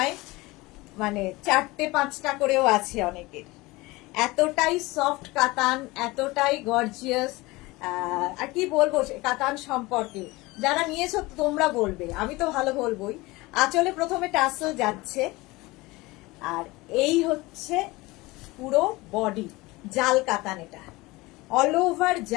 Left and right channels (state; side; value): quieter; right; 21.7 dB